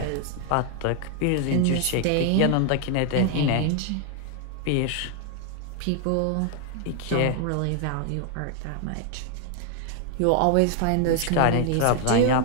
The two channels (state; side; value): different; both; correlation 0.00